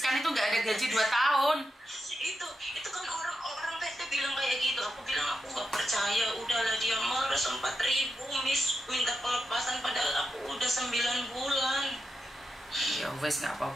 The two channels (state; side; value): normal; both; correlation 0.87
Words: itu nggak ada gaji 2 tahun. Itu kan orang PT bilang kayak gitu. Aku bilang aku nggak percaya. Udahlah dia marah 4.000 Miss minta pelepasan padahal aku udah 9 bulan. Ya wes nggak